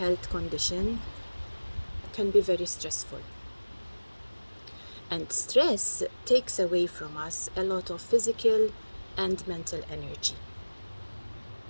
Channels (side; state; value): both; inverted; correlation -1.00